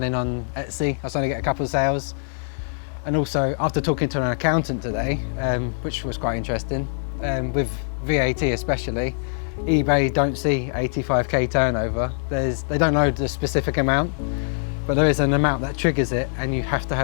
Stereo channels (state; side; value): silent; right; digital silence